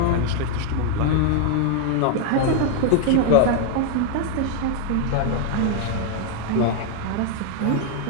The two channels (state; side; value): different; both; correlation 0.00